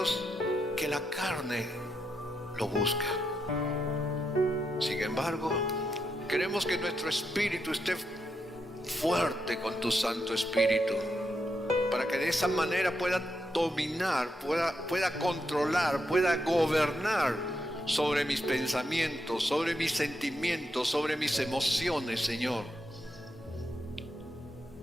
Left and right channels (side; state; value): both; normal; correlation 0.82